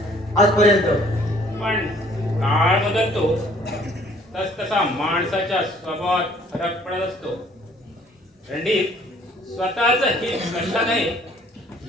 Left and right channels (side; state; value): both; normal; correlation 0.58